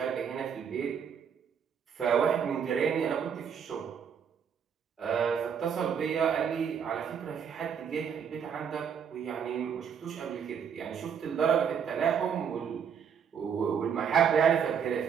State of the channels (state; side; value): quieter; left; 7.4 dB